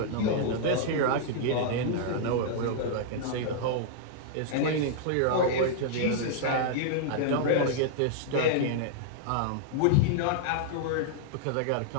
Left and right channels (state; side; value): different; both; correlation -0.01